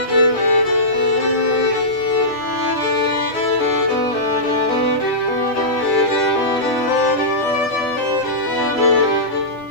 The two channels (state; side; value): normal; both; correlation -0.17